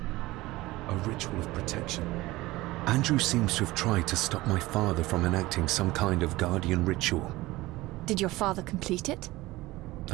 A ritual of protection. Andrew seems to have tried to stop my father from enacting some kind of guardian ritual. Did your father complete it?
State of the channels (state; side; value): quieter; left; 19.1 dB